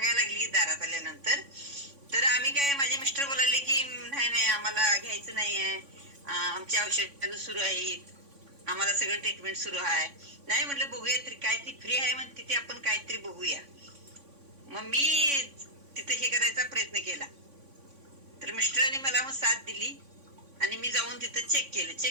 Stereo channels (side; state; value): left; late; 3.5 ms